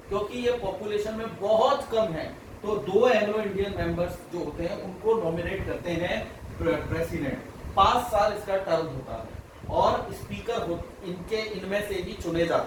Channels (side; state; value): both; identical; correlation 1.00